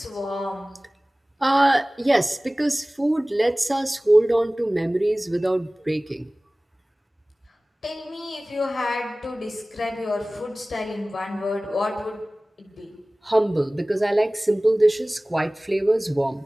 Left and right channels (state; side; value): normal; both; correlation 0.98